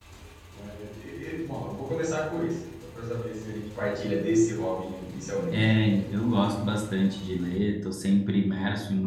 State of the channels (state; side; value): identical; both; correlation 1.00